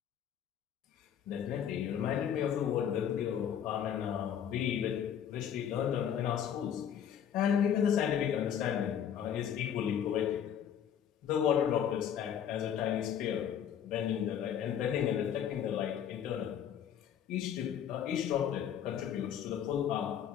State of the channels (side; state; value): right; quieter; 9.1 dB